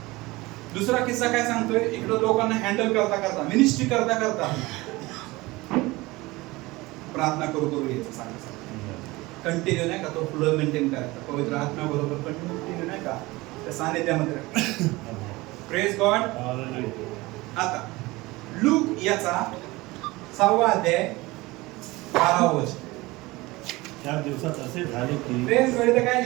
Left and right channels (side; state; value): left; quieter; 21.2 dB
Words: दुसरा किस्सा काय सांगतोय? इकडे लोकांना हँडल करता करता, मिनिस्ट्री करता करता प्रार्थना करू यायचं सांगायचं. कंटिन्यू नाही का तो फ्लो मेंटेन करायचा, पवित्र आत्मा बरोबर कंटिन्यू नाही का त्या सानिध्यामध्ये. Praise God. आता लूक याचा 6वा अध्याय 12व वचन. त्या दिवसात असे झाले की प्रेज गॉड इथे काय